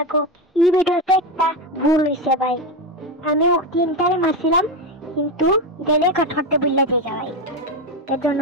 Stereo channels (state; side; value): normal; both; correlation 0.14